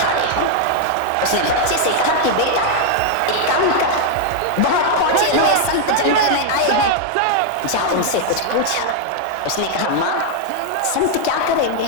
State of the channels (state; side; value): different; both; correlation 0.00